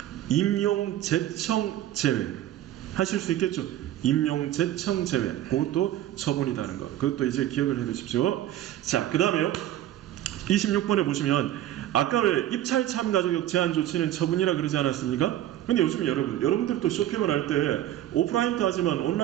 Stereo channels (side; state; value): left; quieter; 12.9 dB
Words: 임용 제청 제외. 하실 수 있겠죠? 임용 제청 제외. 그것도 처분이라는 것. 그것도 이제 기억을 해 두십시오. 자, 그 다음에요. 26번에 보시면 아까 왜 입찰 참가 자격 제한 조치는 처분이라 그러지 않았습니까? 근데 요즘 여러분들도 쇼핑을 할 때 오프라인도 하지만